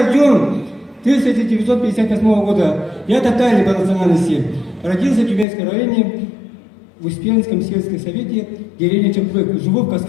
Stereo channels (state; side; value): drops out; right; at 5.5 s